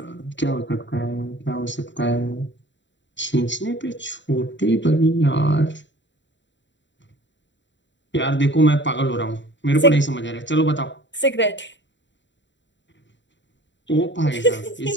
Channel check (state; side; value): late; right; 0.53 ms